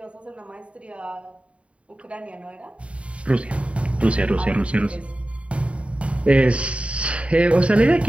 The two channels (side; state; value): left; late; 0.062 ms